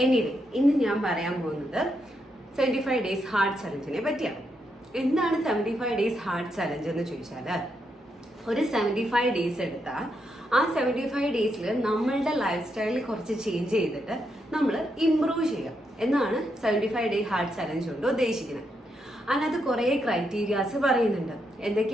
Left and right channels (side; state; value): both; normal; correlation 0.81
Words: എനിവേ, ഇന്ന് ഞാൻ പറയാൻ പോകുന്നത് 75 ഡേയ്സ് ഹാർട്ട് ചലഞ്ചിനെ പറ്റിയാണ്. എന്താണ് 75 ഡേയ്സ് ഹാർട്ട് ചലഞ്ച് എന്ന് ചോദിച്ചാൽ, ഒരു 75 ഡേയ്സ് എടുത്താൽ ആ 75 ഡേയ്സിൽ നമ്മളുടെ ലൈഫ് സ്റ്റൈലിൽ കുറച്ച് ചേഞ്ച് ചെയ്തിട്ട് നമ്മൾ ഇംപ്രൂവ് ചെയ്യാം എന്നാണ് 75 ഡേ ഹാർട്ട് ചലഞ്ച് കൊണ്ട് ഉദ്ദേശിക്കുന്നത്. അതിനകത്ത് കുറേ ക്രൈറ്റീരിയാസ് പറയുന്നുണ്ട്.